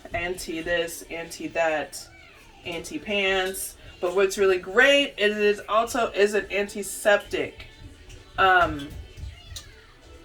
anti-this, anti-that, anti-pants. But what's really great is it also is an antiseptic.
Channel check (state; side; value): identical; both; correlation 1.00